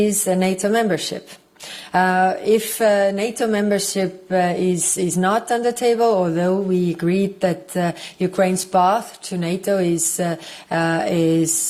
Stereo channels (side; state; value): both; identical; correlation 1.00